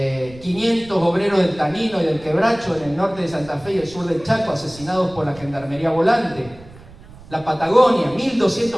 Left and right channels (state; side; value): noise; right; rumble, 21 dB below the sound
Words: 500 obreros del Tanino y del Quebracho en el norte de Santa Fe y el sur del Chaco asesinados por la Gendarmería Volante. La Patagonia,